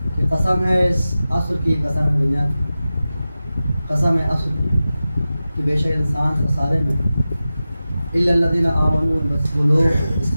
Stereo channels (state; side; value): inverted; both; correlation -0.94